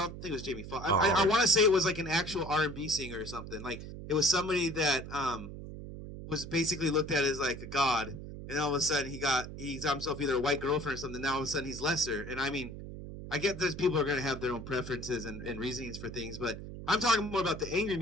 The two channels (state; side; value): noise; right; hum, 10 dB below the sound